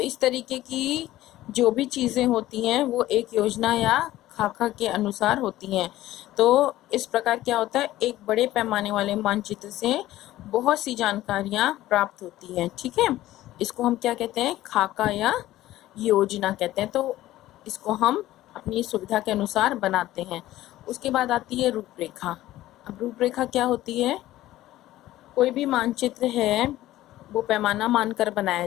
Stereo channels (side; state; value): right; quieter; 15.2 dB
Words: तरीके की जो भी चीज़ें होती हैं वो एक योजना या खाका के अनुसार होती हैं। तो इस प्रकार क्या होता है, एक बड़े पैमाने वाले मानचित्र से बहुत सी जानकारियाँ प्राप्त होती हैं। ठीक है, इसको हम क्या कहते हैं, खाका या योजना कहते हैं। तो इसको हम अपनी सुविधा के अनुसार बनाते हैं। उसके बाद आती है रूपरेखा। अब रूपरेखा क्या होती है, कोई भी मानचित्र है वो पैमाना मानकर बनाया